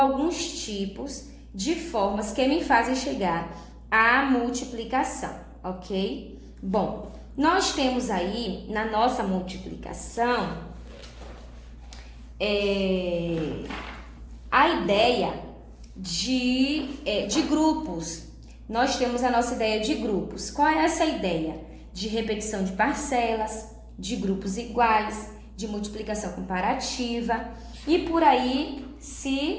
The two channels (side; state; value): both; identical; correlation 1.00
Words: tipos de formas que me fazem chegar à multiplicação, ok? Bom, nós temos aí na nossa multiplicação a ideia de grupos. Nós temos a nossa ideia de grupos. Qual é essa ideia? De repetição de parcelas, de grupos iguais, de multiplicação comparativa e por aí